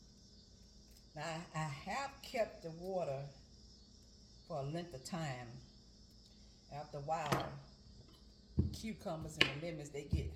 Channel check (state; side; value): identical; both; correlation 1.00